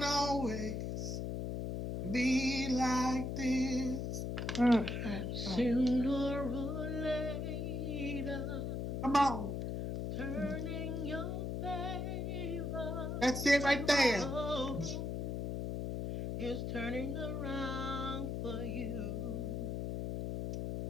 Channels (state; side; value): noise; left; hum, 2 dB below the sound